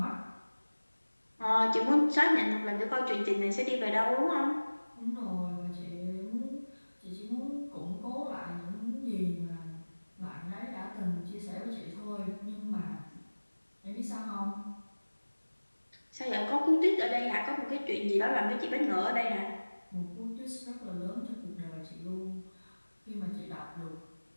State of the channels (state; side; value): inverted; both; correlation -1.00